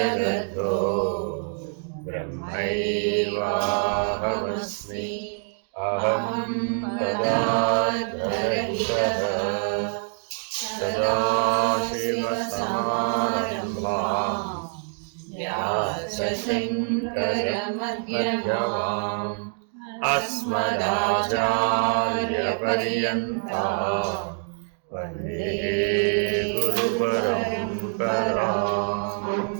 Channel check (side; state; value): left; silent; 61 dB below the other